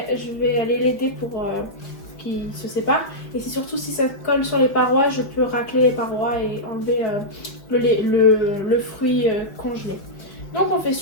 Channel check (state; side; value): late; right; 5.2 ms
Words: aller l'aider pour qu'il se sépare. Et c'est surtout si ça colle sur les parois, je peux racler les parois et enlever le fruit congelé. Donc on fait